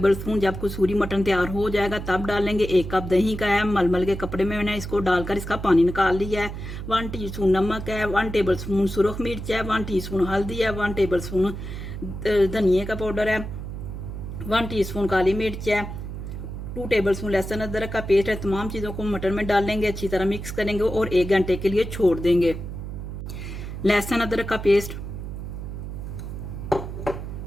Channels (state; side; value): noise; right; hum, 8 dB below the sound